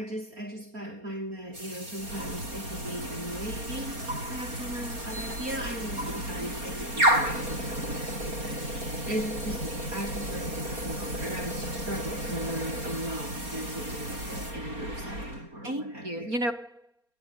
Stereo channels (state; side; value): late; left; 4.3 ms